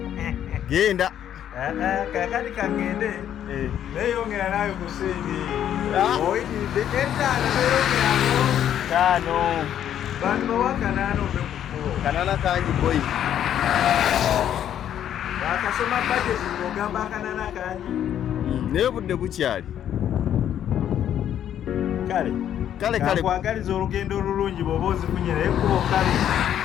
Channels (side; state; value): right; quieter; 10.3 dB